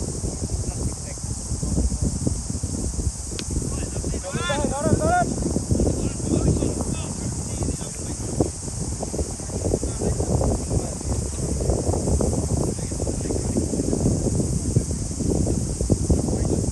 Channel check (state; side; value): identical; both; correlation 1.00